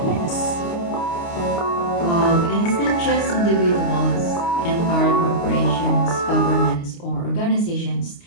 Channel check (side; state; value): right; late; 29 ms